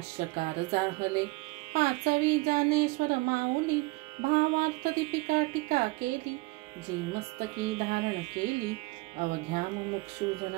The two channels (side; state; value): left; quieter; 24.4 dB